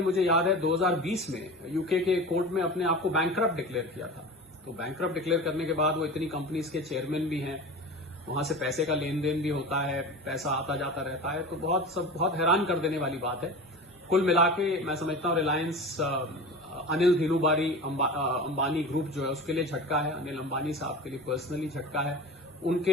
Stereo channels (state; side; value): normal; both; correlation 0.33